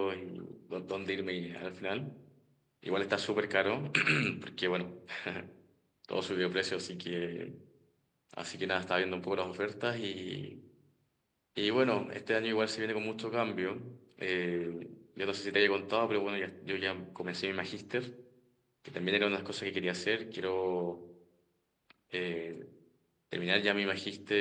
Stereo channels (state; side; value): identical; both; correlation 1.00